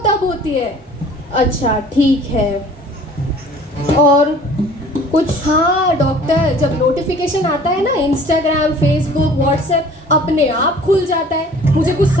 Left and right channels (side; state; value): both; normal; correlation 0.49